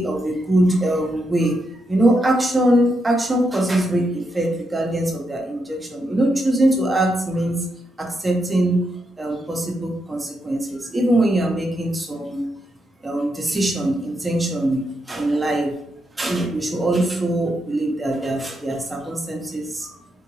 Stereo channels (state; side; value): normal; both; correlation 0.82